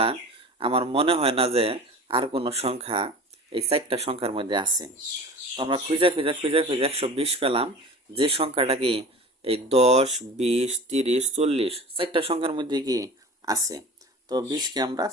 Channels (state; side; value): normal; both; correlation 0.37